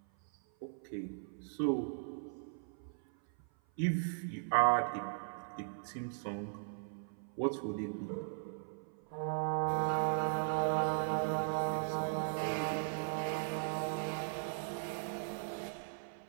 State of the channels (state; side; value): silent; left; 52 dB below the other